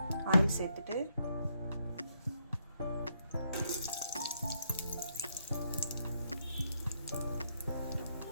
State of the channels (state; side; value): inverted; both; correlation -0.76